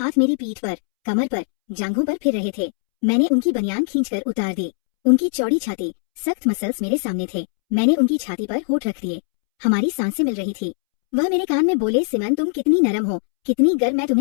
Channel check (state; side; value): silent; right; 65 dB below the other